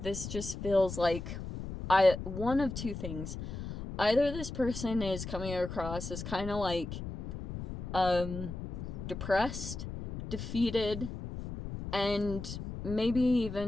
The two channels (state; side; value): noise; left; rumble, 7 dB below the sound